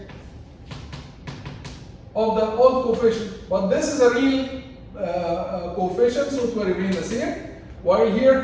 of the old coefficient. But this is a real coefficient, so it will remain the same. While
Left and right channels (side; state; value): both; identical; correlation 1.00